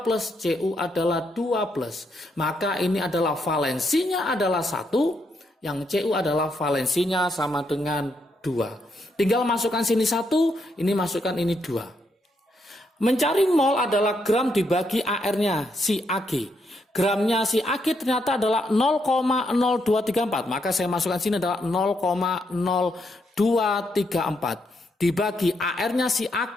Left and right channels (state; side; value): normal; both; correlation 0.78